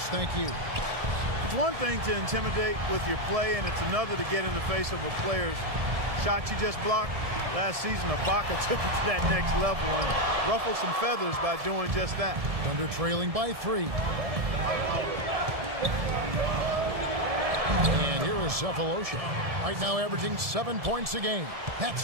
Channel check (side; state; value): left; late; 1.7 ms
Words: thank you. It's one thing to intimidate with your play, and it's another to get in the face of a player's shot you just blocked. Last season, Ibaka took it to that next level and ruffled some feathers by doing just that. Thunder trailing by 3. And here is Cephalosha. Right now averaging 7 points a game.